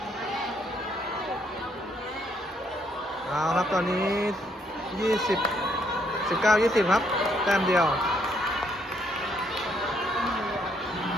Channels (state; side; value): normal; both; correlation 0.71